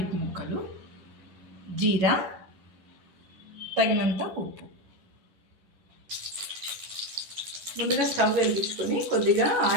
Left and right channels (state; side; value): late; left; 11 ms